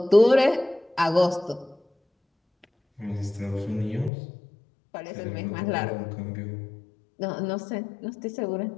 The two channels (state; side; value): drops out; right; at 4.1 s